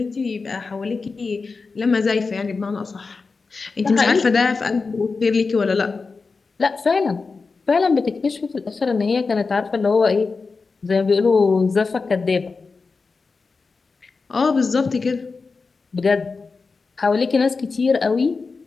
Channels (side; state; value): right; quieter; 4.4 dB